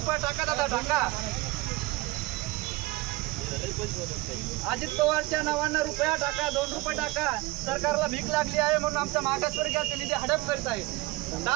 टाका दादा टाका। अजित पवारच्या नावाने रुपया टाका, 2 रुपये टाका। सरकारला भीक लागली आहे म्हणून आमचा मागासवर्गीयाचा निधी हडप करत आहे।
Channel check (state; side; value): quieter; left; 20.3 dB